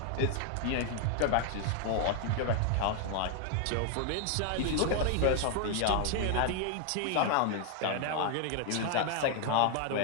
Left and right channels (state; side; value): different; both; correlation 0.00